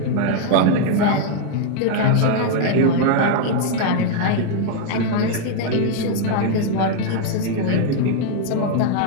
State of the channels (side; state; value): both; different; correlation 0.00